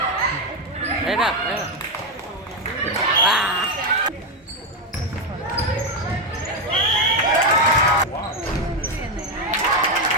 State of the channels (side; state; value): both; normal; correlation 0.06